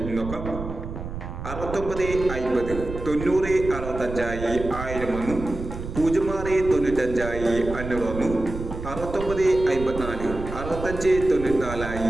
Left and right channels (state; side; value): noise; right; rumble, 8 dB below the sound